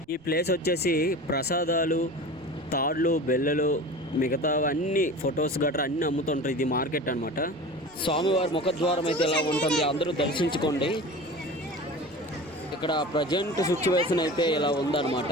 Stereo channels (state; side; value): noise; right; rumble, 27 dB below the sound